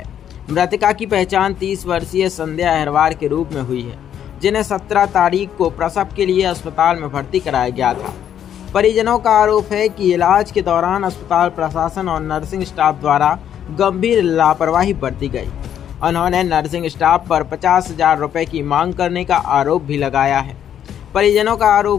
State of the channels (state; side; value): quieter; right; 9.7 dB